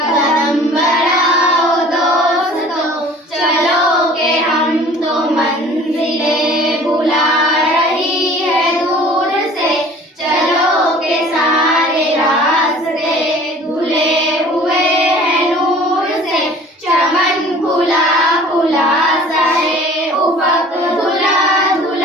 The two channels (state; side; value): normal; both; correlation 0.48